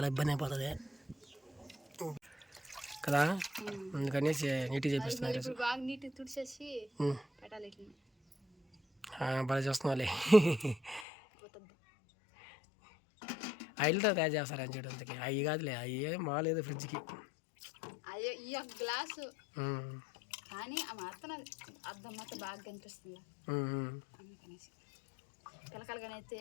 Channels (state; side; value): drops out; right; at 11.1 s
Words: ఇబ్బంది అయిపోతుంది కదా. అందుకని నీట్గా చేపిస్తున్నారు ఈరోజు. బాగా చూస్తున్నావాలి. ఆయిల్తో తయారు చేస్తారని చేయడానికి అవి కాదులే, అవి మాలేదు ఫ్రిడ్జ్కి. గ్లాసు కానీ ఆ మాత్రం అర్థం మాత్రం బాగా కనిపిస్తుంది అందుకనేసి పిలకలుగానైతే